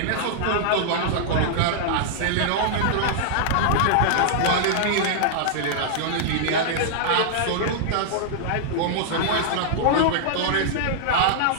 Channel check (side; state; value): both; different; correlation -0.01